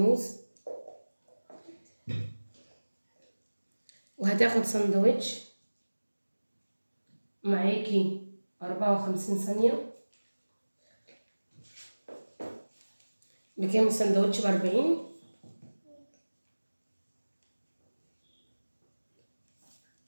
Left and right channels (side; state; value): both; inverted; correlation -1.00